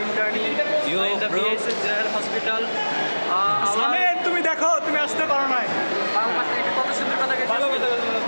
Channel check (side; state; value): both; inverted; correlation -1.00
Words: in the BSS General Hospital. সামের তুমি দেখো তুমি আসতে পারো না কত সুন্দর কথা